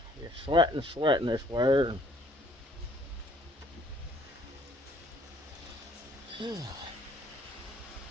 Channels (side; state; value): both; normal; correlation 0.61